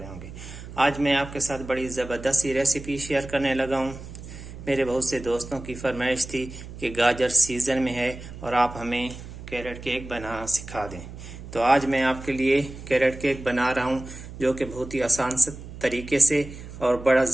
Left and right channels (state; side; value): noise; right; hum, 13 dB below the sound